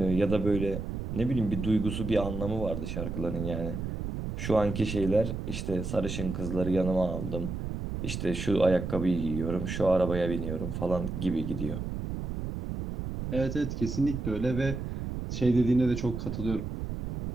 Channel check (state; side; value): noise; right; rumble, 5 dB below the sound